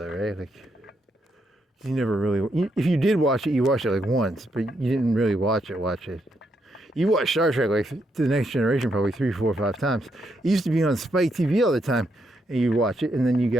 right? Like, you never really. If you did watch it, you watched it like once, but you didn't really watch it. You watched Star Trek like to the Next Generation probably 3, 4, 5 times. It used to be on Spike TV all the time, and you watch it, and then you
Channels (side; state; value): both; normal; correlation 0.79